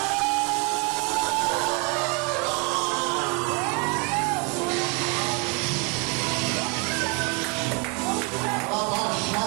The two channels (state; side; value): quieter; left; 31.3 dB